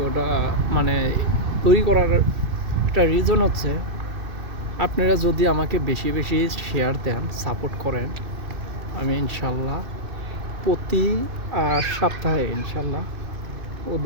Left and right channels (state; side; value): late; left; 2.6 ms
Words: মানে তৈরি করার একটা রিজন হচ্ছে, আপনারা যদি আমাকে বেশি বেশি শেয়ার দেন, সাপোর্ট করেন, আমি ইনশাল্লাহ প্রতি সপ্তাহে ইনশাল্লাহ